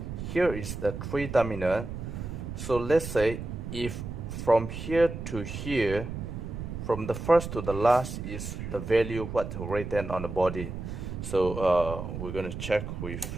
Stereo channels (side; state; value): right; noise; rumble, 7 dB below the sound